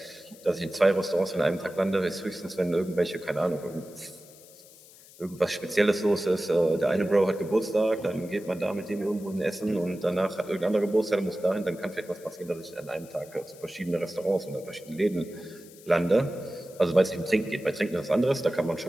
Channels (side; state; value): left; noise; hiss, 22 dB below the sound